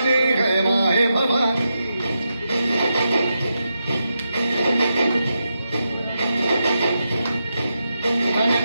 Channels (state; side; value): inverted; both; correlation -0.87